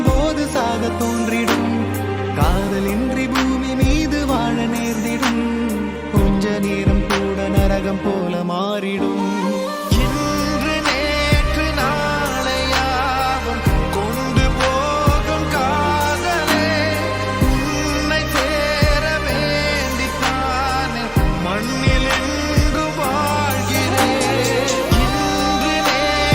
போது சாக தோன்றிடும். காதலின்றி பூமி மீது வாழ நேர்ந்திடும். கொஞ்ச நேரம் கூட நரகம் போல மாறிடும். இன்று நேற்று நாளையாவும் கொண்டு போகும் காதலே உன்னை சேர வேண்டித்தானே மண்ணில் எங்கு வாழ்கிறேன். இன்று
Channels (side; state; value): both; identical; correlation 1.00